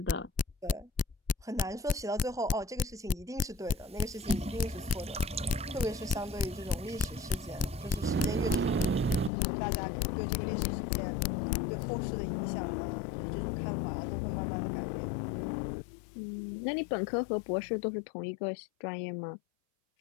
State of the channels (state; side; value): drops out; right; at 9.3 s